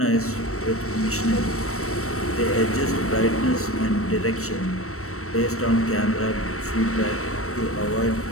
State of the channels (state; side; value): late; right; 0.64 ms